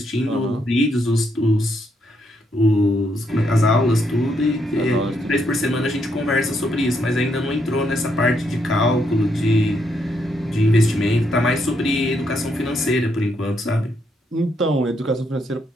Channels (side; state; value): both; normal; correlation 0.76